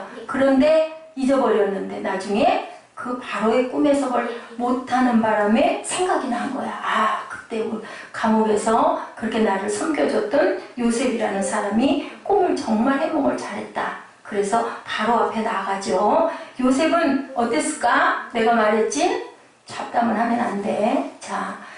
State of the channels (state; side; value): identical; both; correlation 1.00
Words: 그런데 잊어버렸는데 나중에 그 바로의 꿈 해석을 못하는 바람에 생각이 난 거야. 아, 그때 감옥에서 그렇게 나를 섬겨줬던 요셉이라는 사람이 꿈을 정말 해몽을 잘했다. 그래서 바로 앞에 나가죠. 요셉은 어땠을까? 내가 말했지? 잡담을 하면 안 돼. 자,